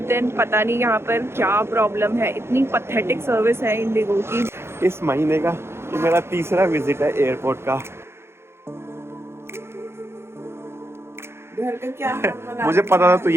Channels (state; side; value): late; left; 0.12 ms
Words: then पता नहीं यहाँ पर क्या प्रॉब्लम है, इतनी पथेटिक सर्विस है इंडिगो की। इस महीने का ये मेरा तीसरा विजिट है एयरपोर्ट का। घर का क्या मुझे पता था तू